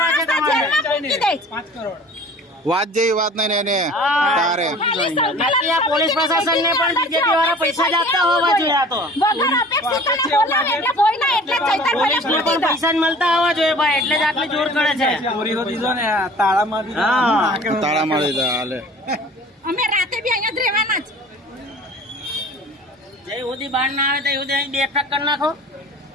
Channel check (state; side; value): normal; both; correlation 0.46